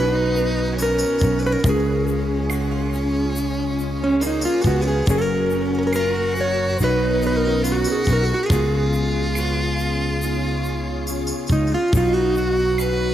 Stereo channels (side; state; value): both; normal; correlation 0.86